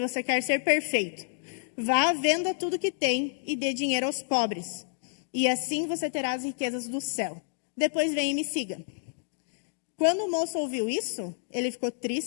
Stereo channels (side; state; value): right; silent; digital silence